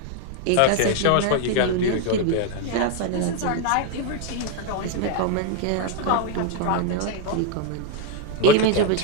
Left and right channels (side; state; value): both; different; correlation 0.01